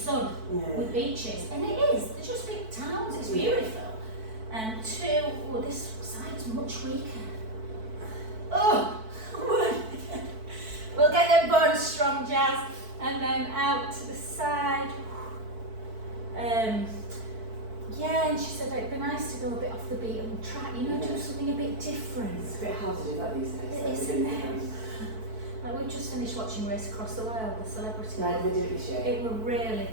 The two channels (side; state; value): left; late; 4.5 ms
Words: with beaches? And it is, they're just big towns, it's beautiful. And 2, this side's much weaker. Oh, we'll get them bones strong, Jazz. And then out to the side. Yeah, and she said it'd be nice to go a bit off the beaten track, do something a bit different. It's a bit hard to do that these days. It is, though, isn't really. it? Like we just finished watching Race Across the World, the celebrity. Right, we do it this year. It were really